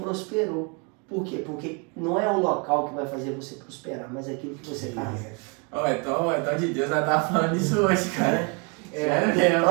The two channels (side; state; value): left; quieter; 33.6 dB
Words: Por quê? Porque não é o local que vai fazer você prosperar, mas é aquilo que você carrega. Então de Deus vai estar falando isso hoje, cara.